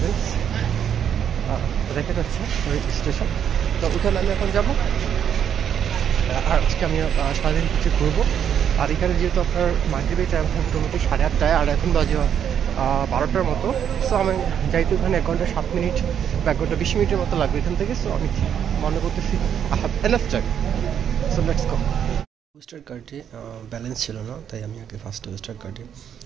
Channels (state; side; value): quieter; left; 8.8 dB